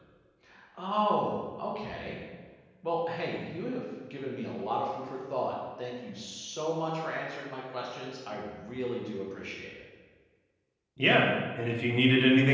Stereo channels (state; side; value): identical; both; correlation 1.00